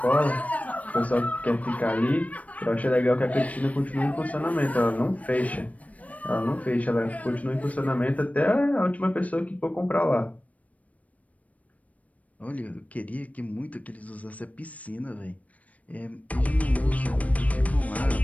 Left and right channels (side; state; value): right; late; 0.068 ms